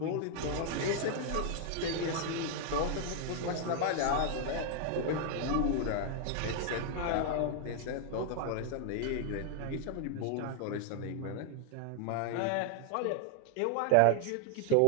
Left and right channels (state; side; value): different; both; correlation 0.00